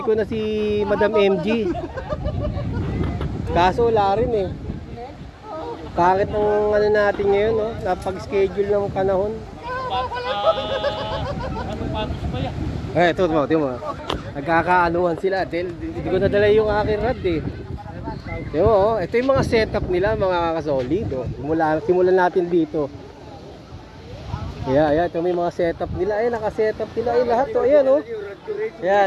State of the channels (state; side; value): identical; both; correlation 1.00